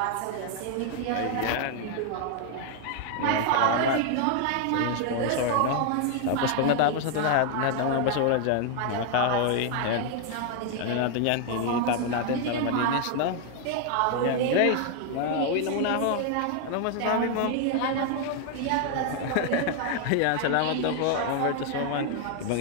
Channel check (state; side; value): different; both; correlation 0.00